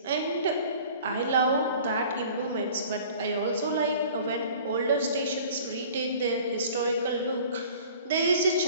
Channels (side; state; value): both; inverted; correlation -0.47